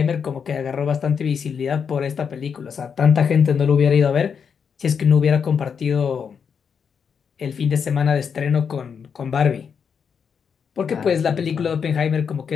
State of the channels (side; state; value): right; quieter; 6.7 dB